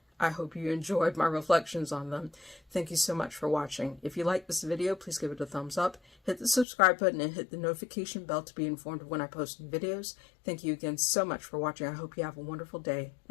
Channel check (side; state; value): right; drops out; at 6.7 s